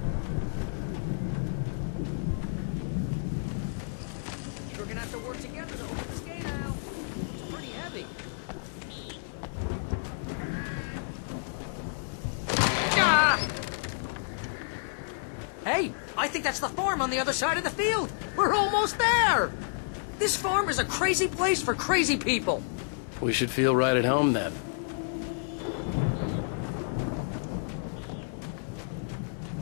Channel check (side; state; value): right; silent; 58 dB below the other